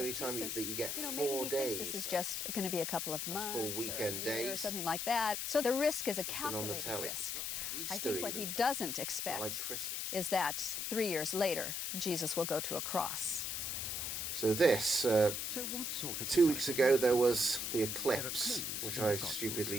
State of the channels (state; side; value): noise; left; hiss, 2 dB below the sound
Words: time that you get 4 days. This is just going to be a couple of months, full weekend days, or something like that. So the risk is a calculated on the risk. I think what he doesn't expect is that 3 years later, Jesus will go to a cross. So this, 2 weeks ago there was the eclipse, which I